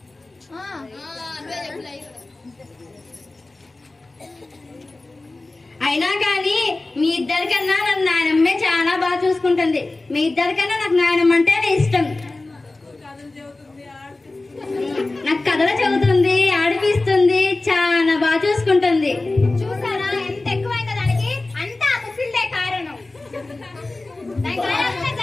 అయినా కానీ మీ ఇద్దరికన్నా నన్ను నాయనమ్మే చాలా బాగా చూసుకుంటుంది. మీ ఇద్దరికన్నా నాకు నాయనమ్మ అంటేనే ఇష్టం. నాకు కథలు చెబుతుంది, ఆడిపిస్తుంది, చాలా బాగా చూసుకుంటుంది. చూసారా ఎంత ఎక్కువైందో దానికి? అంతా ఆ ముసిల్దే కారణం.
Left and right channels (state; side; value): quieter; right; 3.1 dB